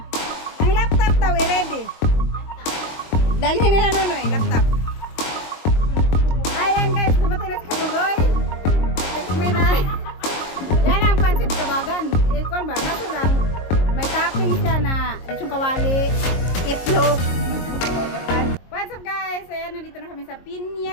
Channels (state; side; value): late; right; 22 ms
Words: Ang laptop daw, ready? Dalhin nila Nunoy, laptop. Ayan guys, dumating na si Kabugoy. Tikmi na. Yan ang pansit kabagan. Ikon ba? Kaso lang, may topping siya na lechong kawali, itlog. What's up guys? Ayan, nandito na kami sa